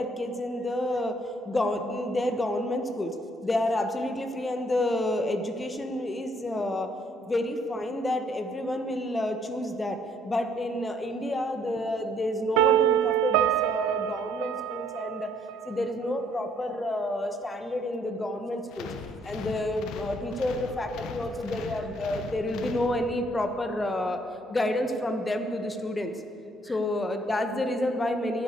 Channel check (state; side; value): normal; both; correlation 0.65